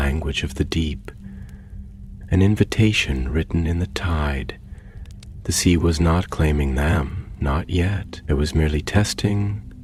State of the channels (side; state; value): both; identical; correlation 1.00